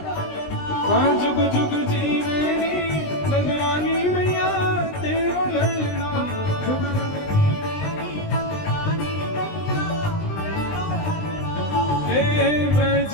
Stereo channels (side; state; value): right; late; 20 ms